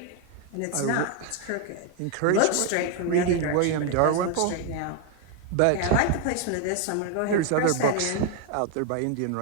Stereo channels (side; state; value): both; different; correlation 0.01